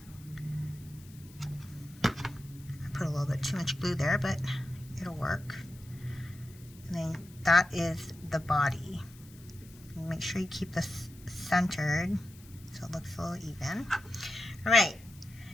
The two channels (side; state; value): left; noise; hiss, 23 dB below the sound